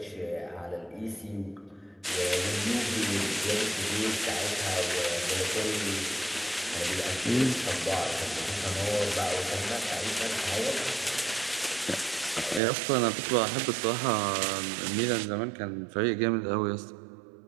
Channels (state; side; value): drops out; left; at 12.6 s